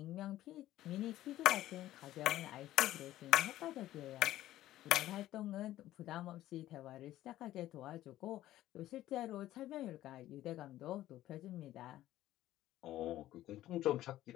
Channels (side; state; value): right; quieter; 14.3 dB